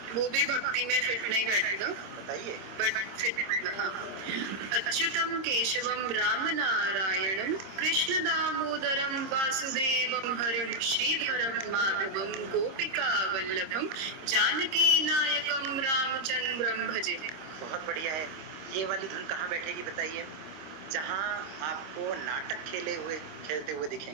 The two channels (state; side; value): late; left; 26 ms